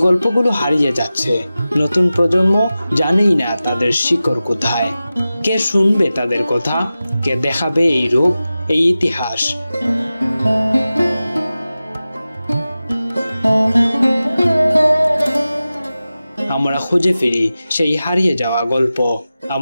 গল্পগুলো হারিয়ে যাচ্ছে, নতুন প্রজন্ম জানেই না তাদের শিকড় কোথায়। কে শুনবে তাদের কথা? কে দেখাবে এই রূপ, এই ইতিহাস? আমরা খুঁজে ফিরি সেই হারিয়ে যাওয়া গল্প,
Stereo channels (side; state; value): both; inverted; correlation -0.95